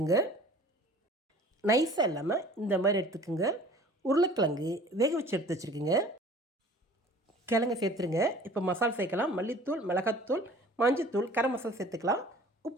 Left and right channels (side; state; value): both; normal; correlation 0.47